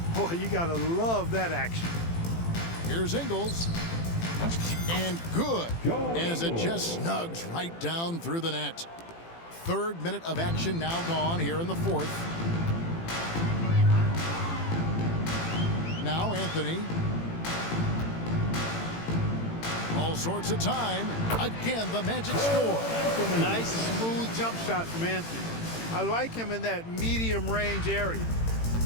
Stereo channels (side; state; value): right; late; 18 ms